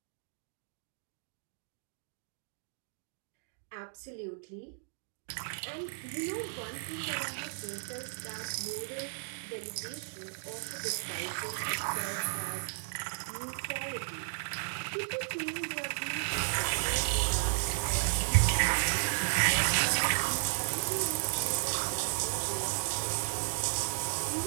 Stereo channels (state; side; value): silent; left; digital silence